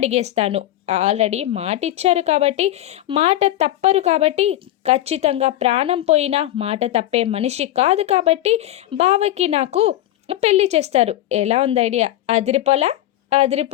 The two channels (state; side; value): quieter; right; 14.3 dB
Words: ఆల్రెడీ మాట ఇచ్చారు కాబట్టి, మాట తప్పరు కాబట్టి, ఖచ్చితంగా ప్రాణం పోయినా మాట తప్పే మనిషి కాదు కాబట్టి బావకి నాకు పెళ్లి చేస్తారు. ఎలా ఉంది ఐడియా? అదిరిపోలా?